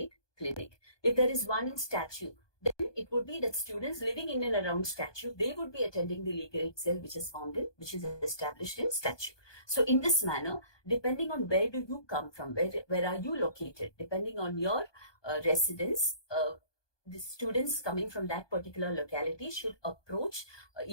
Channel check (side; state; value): right; late; 1.2 ms